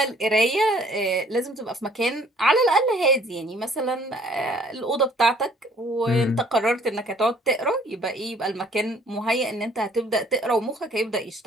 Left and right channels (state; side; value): normal; both; correlation 0.58